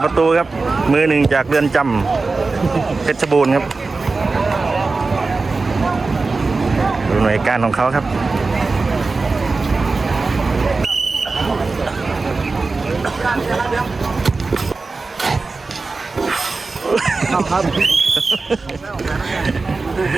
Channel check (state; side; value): quieter; left; 3.9 dB